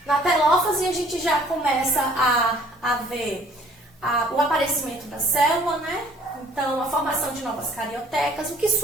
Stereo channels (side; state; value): both; normal; correlation 0.56